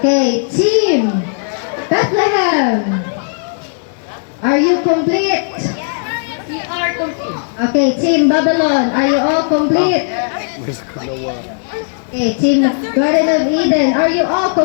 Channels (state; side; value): silent; right; digital silence